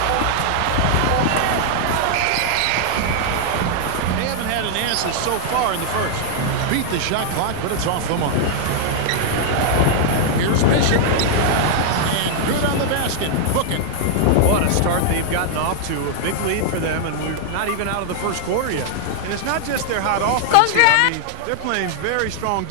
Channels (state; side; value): different; both; correlation -0.01